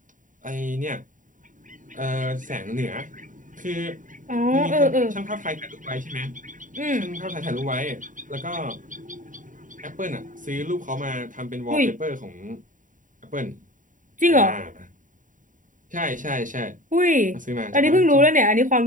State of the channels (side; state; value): left; late; 0.38 ms